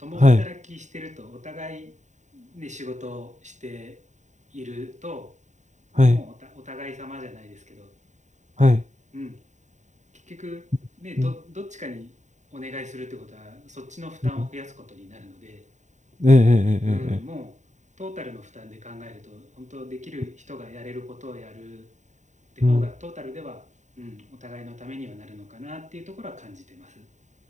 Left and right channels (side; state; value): left; late; 0.34 ms